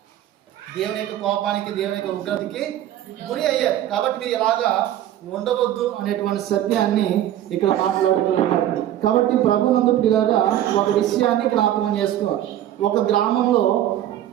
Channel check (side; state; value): left; quieter; 12.2 dB